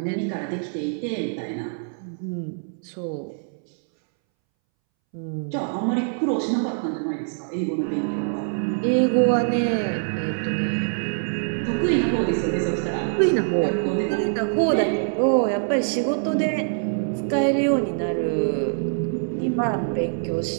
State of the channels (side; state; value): left; silent; 62 dB below the other